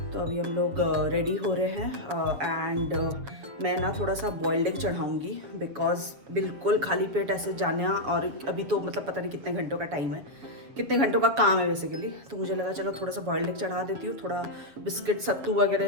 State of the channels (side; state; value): left; late; 7.4 ms